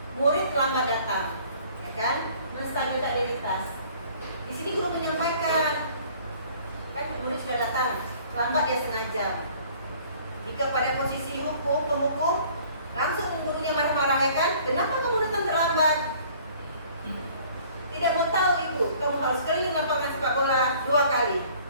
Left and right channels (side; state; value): both; inverted; correlation -0.54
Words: murid terlambat datang, ya kan, menstabilkan identitas. Di sini guru menyampaikan, kan murid sudah datang, terlambat dia sengaja. Jika pada posisi penghukum, langsung gurunya marah-marah ya kan, kenapa kamu datang terlambat? Tidak mau tahu ibu, kamu harus keliling lapangan sepak bola 2 kali.